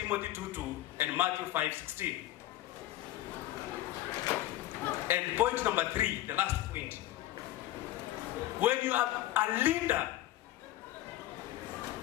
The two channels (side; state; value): right; quieter; 14.9 dB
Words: 2:2 and Matthew 5:16. And point number 3, the last point. When you are a leader,